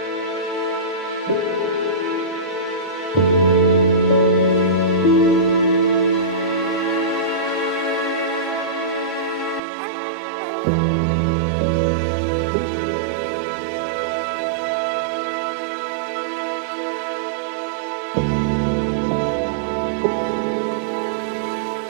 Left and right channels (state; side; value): drops out; left; at 9.6 s